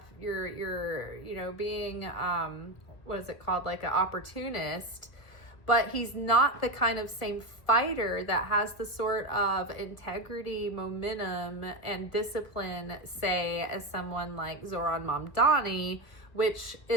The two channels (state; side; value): late; right; 1.8 ms